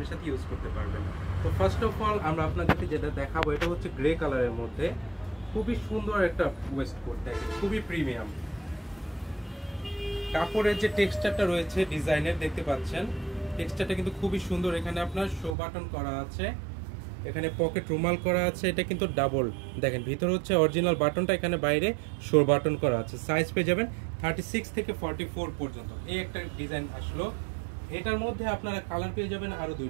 সাথে ইউজ করতে পারবেন। তো ফার্স্ট অফ অল আমরা আপনাদেরকে যেটা দেখাবো এটা হচ্ছে গ্রে কালারের মধ্যে খুবই সুন্দর একটা ওয়েস্টকোট, দেখেন খুবই প্রিমিয়াম। কাপড়ের যে টেক্সচারটা রয়েছে ডিজাইনের দেখতে পাচ্ছেন, টেক্সচারটা কিন্তু খুবই সুন্দর। এখানে আপনার শো বাটন করা আছে, এখানে পকেট রুমাল করা আছে, এটা কিন্তু ডাবল। দেখেন ভিতরে হচ্ছে অরিজিনাল বাটনটা, এখানে বাইরে শো বাটন করা আছে। সাইজ পেয়ে যাবেন 36 থেকে 44 পর্যন্ত। এই একটা ডিজাইন আসলো। এটার মধ্যে আপনারা কালার পেয়ে যাবেন আরো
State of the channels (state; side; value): drops out; left; at 15.6 s